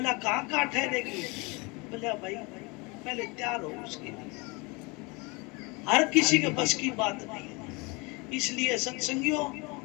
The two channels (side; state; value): right; quieter; 27.6 dB